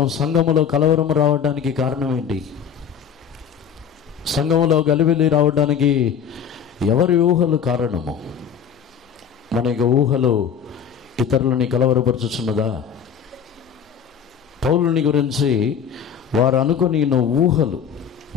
సంఘములో కలవరం రావడానికి కారణం ఏంటి? సంఘములో గలిబిలి రావడానికి ఎవరి ఊహలు కారణము? మన యొక్క ఊహలు ఇతరులని కలవరపరుచుచున్నదా? పౌలుని గురించి వారు అనుకుని ఊహలు,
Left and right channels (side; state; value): right; quieter; 7.7 dB